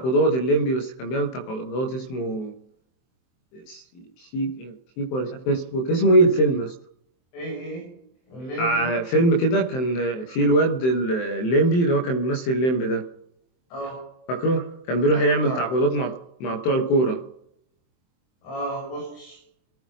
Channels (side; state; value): right; late; 23 ms